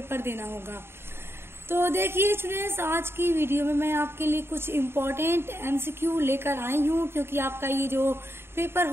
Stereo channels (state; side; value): late; left; 0.11 ms